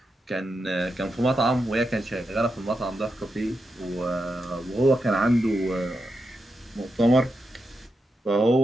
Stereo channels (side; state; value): both; normal; correlation 0.86